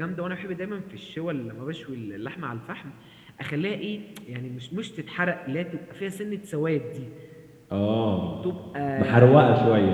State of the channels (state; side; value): identical; both; correlation 1.00